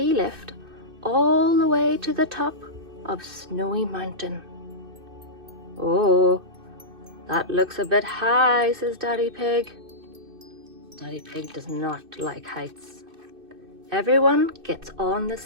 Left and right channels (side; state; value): left; late; 2.6 ms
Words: lift all the way to the top of Snowy Mountain. "Oh, that looks a bit high," says Daddy Pig. Daddy Pig does not like heights. Everyone gets on the